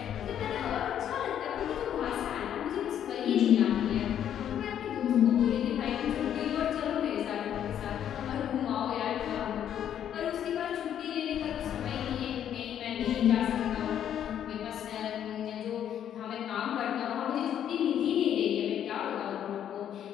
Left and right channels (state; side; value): quieter; right; 9.9 dB